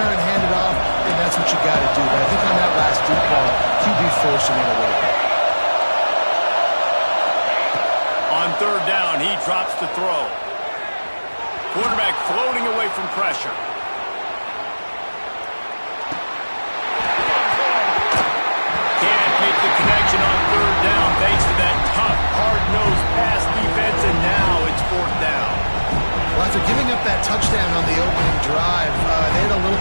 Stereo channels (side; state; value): both; inverted; correlation -1.00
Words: and hand it off, then that's what you got to do. But I think on that last deep ball, QB forcing it a little bit. On 3rd down, he drops to throw. Quarterback floating away from pressure. Can't make the connection on 3rd down thanks to that tough, hard-nosed pass defense, and now it's 4th down. Well, after giving up that touchdown on the opening drive, they had a little